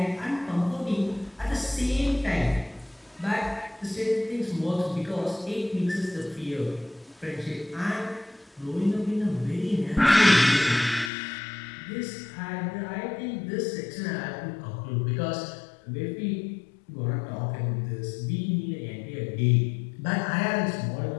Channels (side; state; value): right; drops out; at 11.1 s